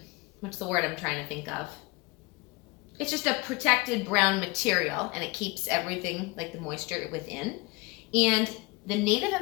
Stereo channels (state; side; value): quieter; right; 24.8 dB